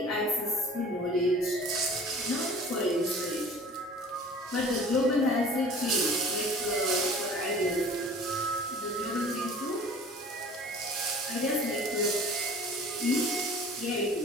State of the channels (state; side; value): normal; both; correlation 0.46